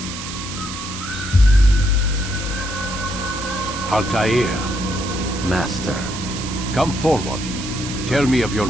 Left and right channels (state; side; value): noise; right; hiss, 9 dB below the sound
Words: Altair, Master. come forward. Tell me of your